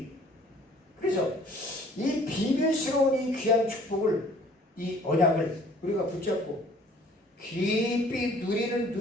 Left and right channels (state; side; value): normal; both; correlation 0.55